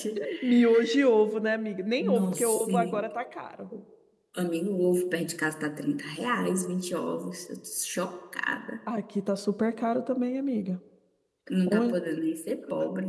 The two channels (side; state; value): both; identical; correlation 1.00